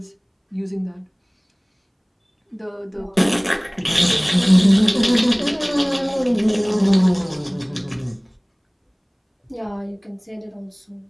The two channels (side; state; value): both; identical; correlation 1.00